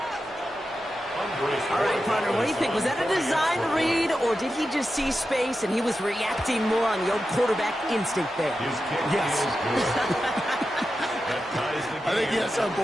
All right, partner, what do you think? Was that a design read, or did he just see space and he was reacting more on the old quarterback instinct there? Yes. I think yes on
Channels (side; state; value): both; normal; correlation 0.91